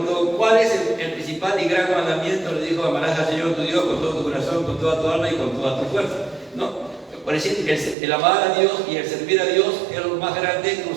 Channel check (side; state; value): left; drops out; at 8.0 s